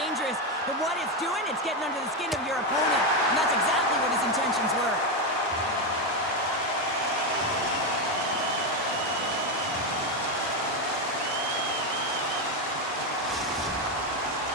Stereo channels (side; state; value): both; normal; correlation 0.09